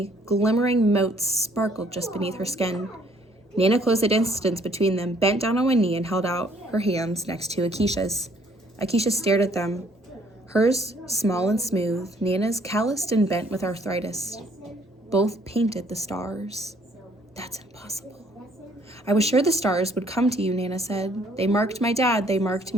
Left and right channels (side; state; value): both; normal; correlation 0.63